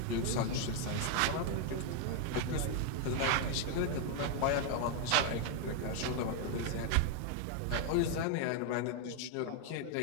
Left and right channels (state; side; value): different; both; correlation 0.00